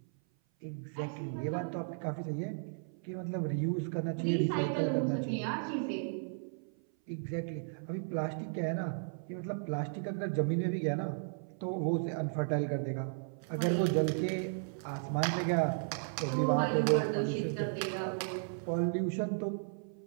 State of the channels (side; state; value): left; silent; 55 dB below the other